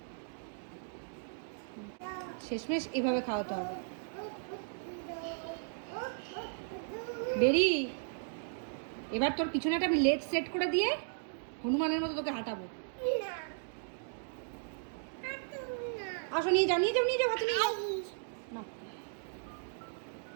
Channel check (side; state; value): left; silent; digital silence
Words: শেষমেশ এভাবে খাওয়াতে হবে। বেরি, এবার তোর পিছনেটা আমি লেট সেট করে দিয়ে হনুমানের মতো তোকে হাঁটাবো। আসো, নিয়ে যাও, নিয়ে যাও, নিয়ে যাও, ভাতু নিয়ে যাও। না,